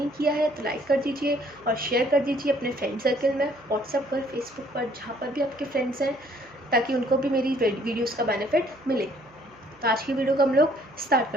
किया है तो लाइक कर दीजिए और शेयर कर दीजिए अपने फ्रेंड सर्कल में, व्हाट्सएप पर, फेसबुक पर, जहाँ पर भी आपके फ्रेंड्स हैं, ताकि उनको भी मेरी वीडियोज़ का बेनिफिट मिले। तो आज की वीडियो को हम लोग स्टार्ट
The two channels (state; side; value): noise; right; hum, 27 dB below the sound